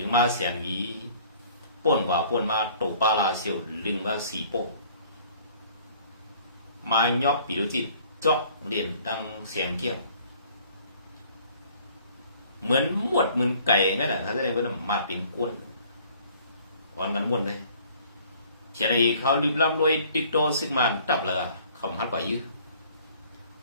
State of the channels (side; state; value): both; inverted; correlation -0.55